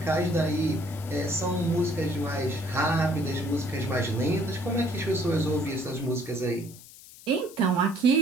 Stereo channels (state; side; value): noise; left; hiss, 19 dB below the sound